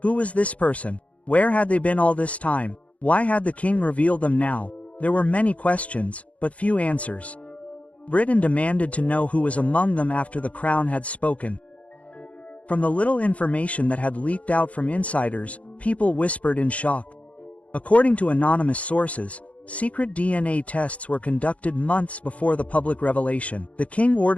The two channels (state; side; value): late; right; 0.065 ms